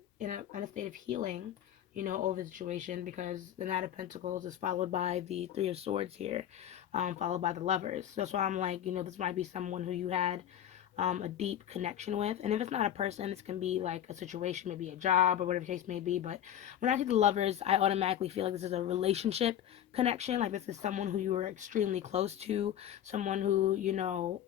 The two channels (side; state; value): right; quieter; 10.6 dB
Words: in a state of healing, over the situation, because the Knight of Pentacles is followed by the Three of Swords here, followed by the Lovers. So that's why I'm like, this might be someone who you had a deep connection with. And if it's not a person, this can be like a situation, maybe a job or whatever the case may be. But when I see the Lovers, I automatically feel like this is a relationship connection. Like this is someone who you were extremely close to, someone who,